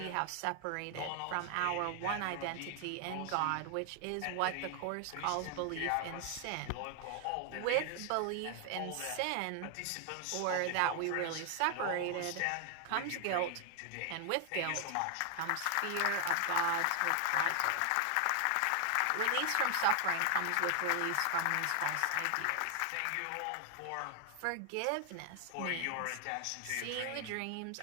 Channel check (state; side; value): different; both; correlation 0.00